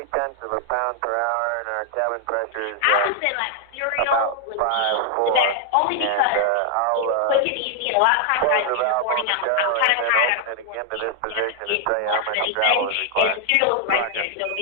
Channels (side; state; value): both; different; correlation 0.00